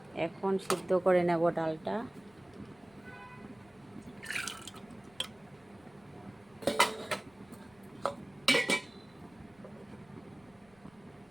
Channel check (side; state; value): left; noise; rumble, 29 dB below the sound